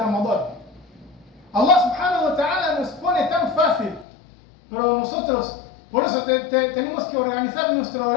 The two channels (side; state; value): right; drops out; at 4.0 s